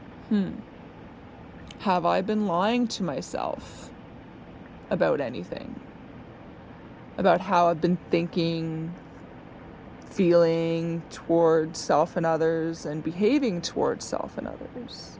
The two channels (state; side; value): identical; both; correlation 1.00